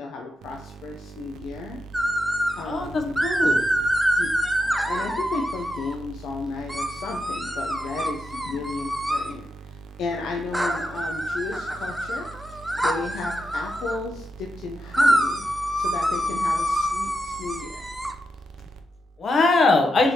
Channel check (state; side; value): normal; both; correlation 0.85